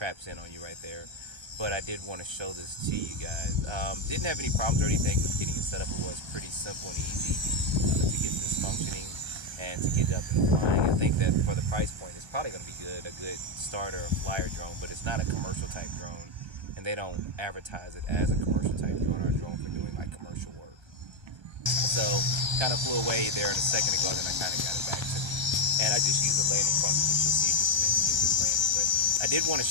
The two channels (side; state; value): left; late; 1.3 ms